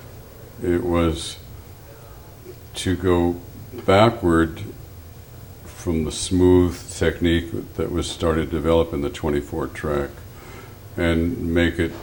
it was to go backward from the smooth technique that was started to develop in the 24-track and make it,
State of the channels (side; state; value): both; identical; correlation 1.00